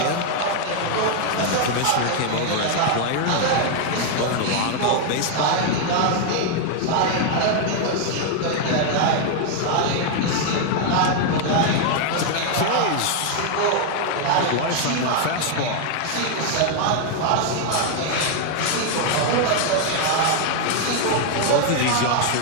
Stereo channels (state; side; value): different; both; correlation 0.00